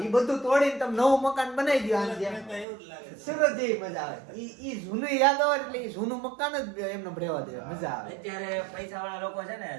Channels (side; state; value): left; drops out; at 2.7 s